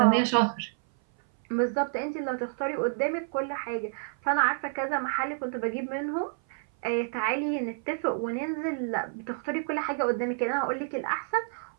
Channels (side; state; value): left; silent; 57 dB below the other